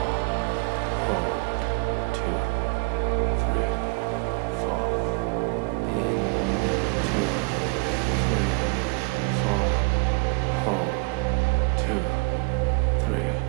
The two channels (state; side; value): quieter; left; 31.1 dB